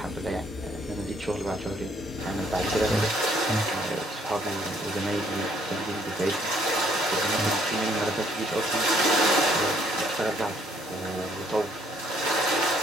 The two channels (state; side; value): normal; both; correlation 0.66